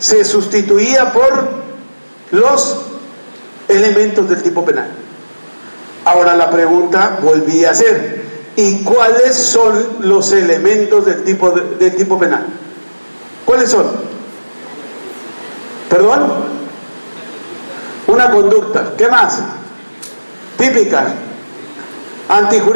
sustituía por los elementos del tipo penal. Ahora la pregunta volvía a ser: ¿y cuáles son los elementos del tipo penal? ¿Cuáles son? ¿Perdón? Una conducta. ¿Qué más? Típica,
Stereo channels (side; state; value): both; inverted; correlation -1.00